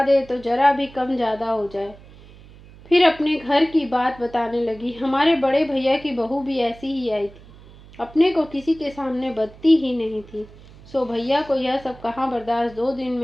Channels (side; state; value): right; noise; hum, 21 dB below the sound